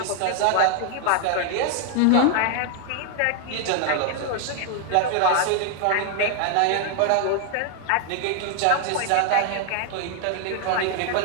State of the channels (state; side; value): different; both; correlation 0.00